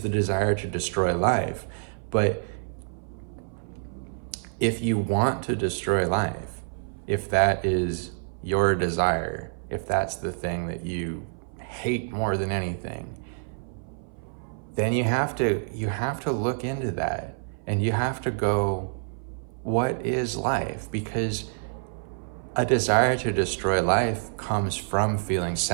the desire to destroy life. But if you want to destroy life, if that is your desire, if that's the thing that you hate more than anything, then you have to look into that, and you have to go, what is life? Because a desire to destroy life comes from feeling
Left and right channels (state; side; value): silent; left; 57 dB below the other